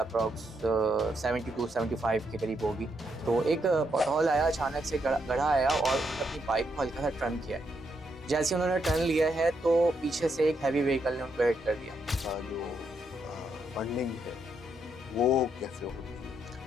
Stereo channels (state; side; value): normal; both; correlation 0.78